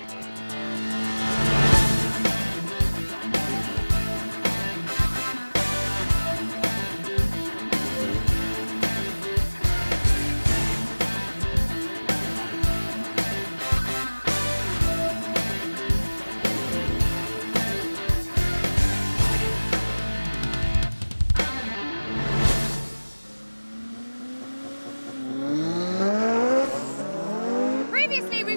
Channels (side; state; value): both; inverted; correlation -1.00